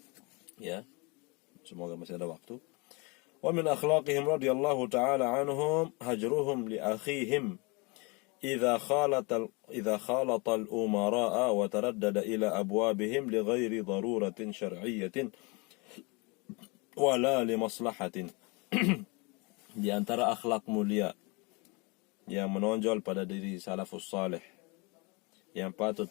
Ya, semoga masih ada waktu. Wa min akhlaqihim radhiyallahu ta'ala anhum hajruhum li akhihim إذا خالط الأمراء وتردد إلى أبوابهم لغير ضرورة شرعية ولا لمصلحة. Di antara akhlak mulia yang menonjol pada diri salafus salih yang patut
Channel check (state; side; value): quieter; right; 28.9 dB